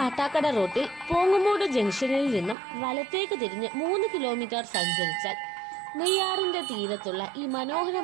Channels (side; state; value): left; drops out; at 2.6 s